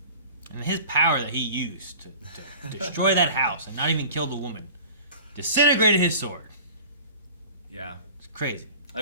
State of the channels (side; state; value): both; inverted; correlation -0.42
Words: and his power that he used to destroy that house and not even kill the woman, disintegrated his sword. Yeah. It's crazy. I